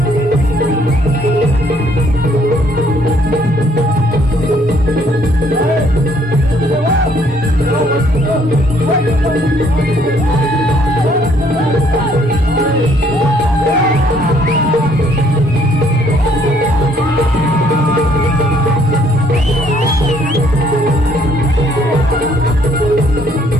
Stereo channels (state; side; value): normal; both; correlation 0.64